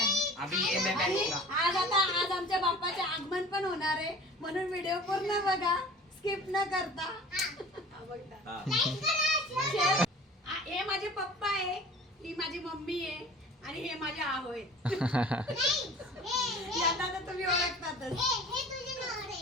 अभी ये मैं आणि पहनूंगा आज आमच्या बाप्पाचे आगमन पण होणार आहे म्हणून व्हिडिओ पूर्ण बघा स्किप न करता. शेअर. हे माझे पप्पा आहे, ही माझी मम्मी आहे आणि हे माझे आहो आहेत. यांना तर तुम्ही ओळखतातच.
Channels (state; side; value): normal; both; correlation 0.43